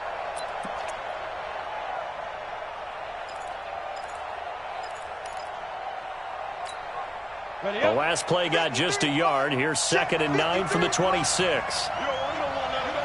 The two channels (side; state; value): both; identical; correlation 1.00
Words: The last play got just a yard. Here's 2nd and 9 from the 26.